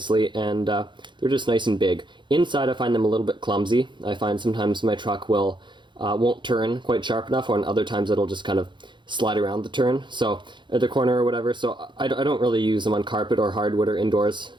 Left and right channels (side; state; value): left; late; 0.23 ms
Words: and they're just nice and big. Inside, I find them a little bit clumsy. I find sometimes my truck won't turn quite sharp enough, or other times it'll just kind of slide around the turn, so at the corner or whatever. So I don't really use them on carpet or hardwood or indoors